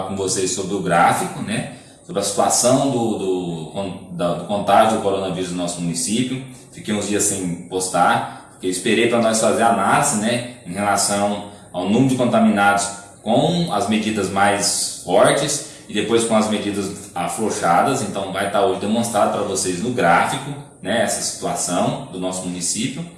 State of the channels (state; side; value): identical; both; correlation 1.00